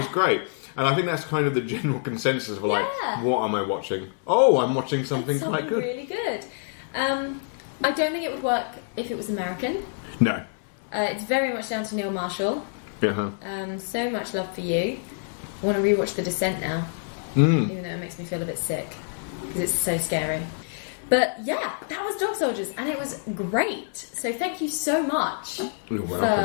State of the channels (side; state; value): right; silent; digital silence